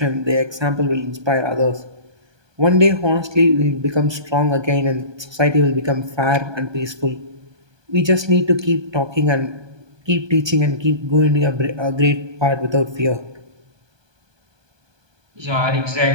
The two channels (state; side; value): late; left; 1.2 ms